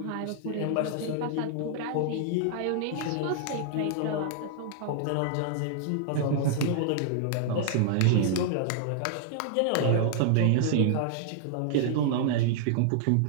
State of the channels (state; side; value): different; both; correlation -0.01